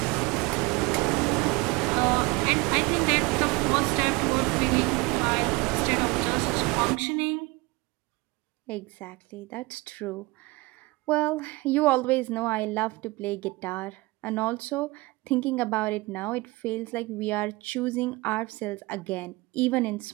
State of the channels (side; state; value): left; quieter; 23.7 dB